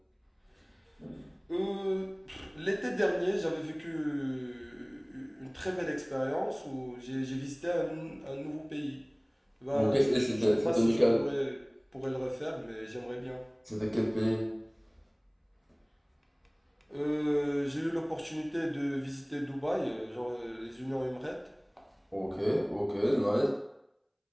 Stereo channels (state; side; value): identical; both; correlation 1.00